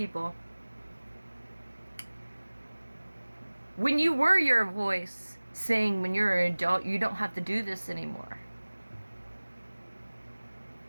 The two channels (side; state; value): both; inverted; correlation -1.00